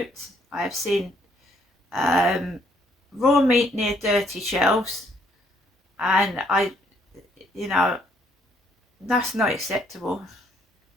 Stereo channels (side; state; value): both; normal; correlation 0.68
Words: I have seen raw meat near dirty shelves, and you know, that's not acceptable.